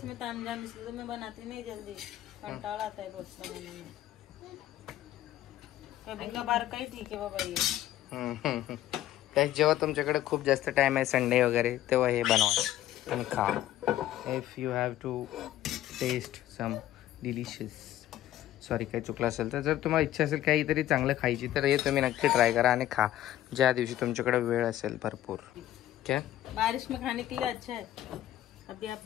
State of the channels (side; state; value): right; quieter; 13.3 dB